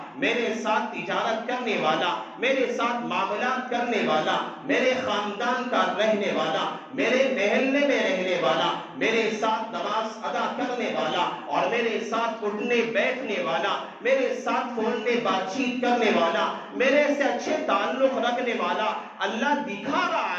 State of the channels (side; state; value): both; identical; correlation 1.00